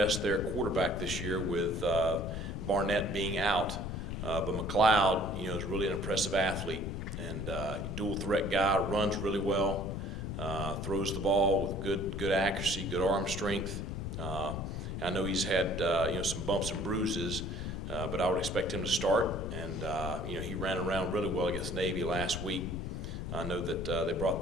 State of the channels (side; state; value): left; noise; rumble, 5 dB below the sound